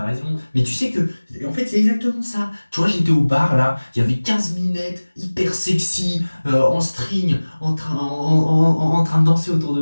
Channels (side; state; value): both; inverted; correlation -1.00